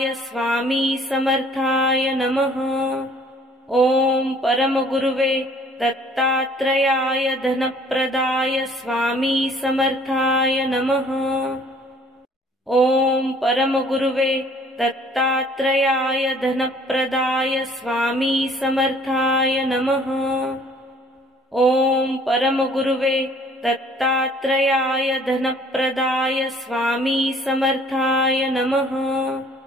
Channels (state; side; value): normal; both; correlation 0.56